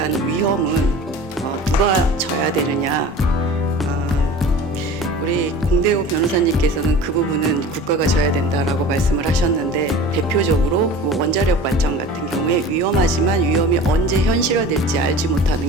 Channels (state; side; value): normal; both; correlation 0.39